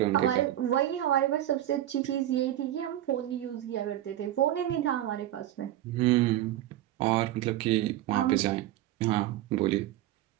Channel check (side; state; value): left; quieter; 13.4 dB